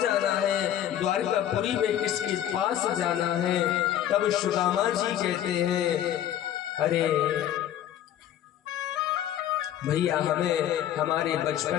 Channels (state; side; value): quieter; right; 11.2 dB